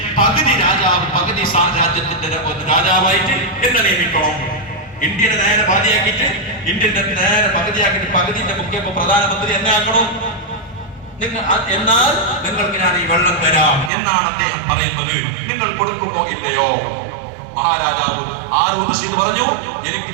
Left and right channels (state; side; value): drops out; left; at 13.9 s